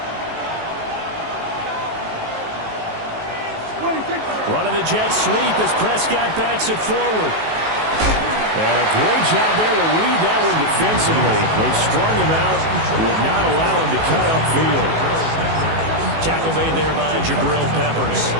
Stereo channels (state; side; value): late; left; 19 ms